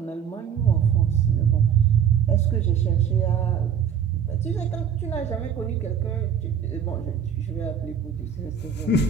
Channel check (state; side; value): quieter; left; 7.9 dB